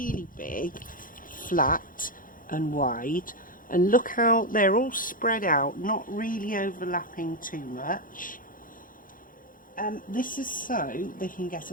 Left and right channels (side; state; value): right; late; 0.40 ms